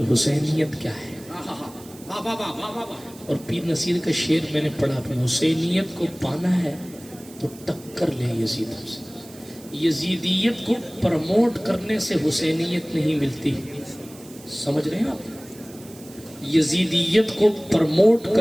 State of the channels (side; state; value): right; noise; hiss, 21 dB below the sound